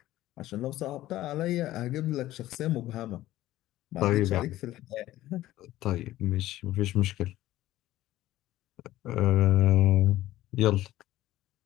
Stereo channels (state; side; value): quieter; right; 15.2 dB